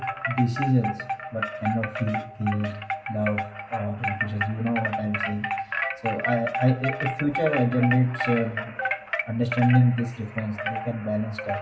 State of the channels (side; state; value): both; identical; correlation 1.00